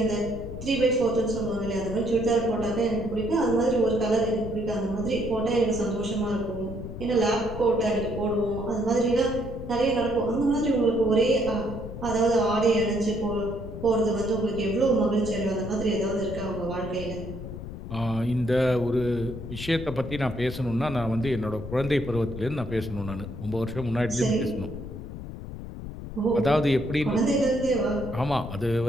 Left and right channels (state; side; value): noise; left; rumble, 10 dB below the sound